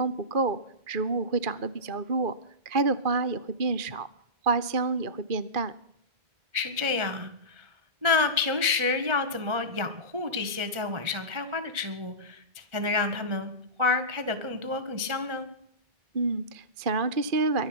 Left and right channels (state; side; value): late; left; 1.4 ms